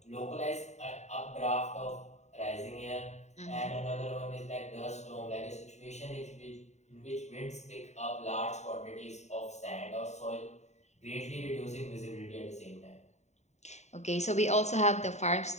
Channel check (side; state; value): right; late; 0.33 ms